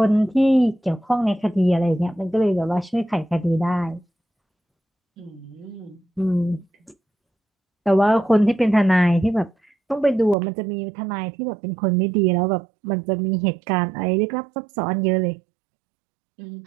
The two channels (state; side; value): drops out; left; at 10.4 s